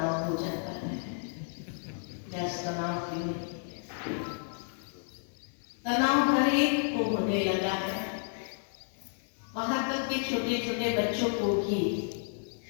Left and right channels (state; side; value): silent; right; 57 dB below the other